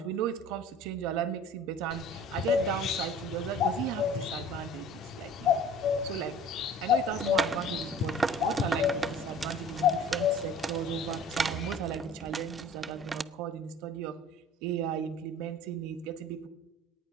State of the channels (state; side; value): normal; both; correlation 0.46